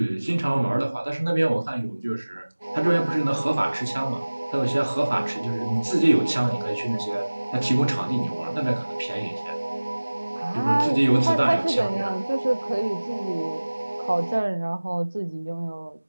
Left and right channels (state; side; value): inverted; both; correlation -1.00